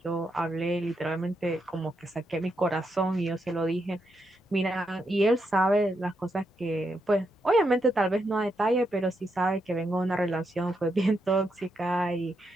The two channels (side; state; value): both; normal; correlation 0.82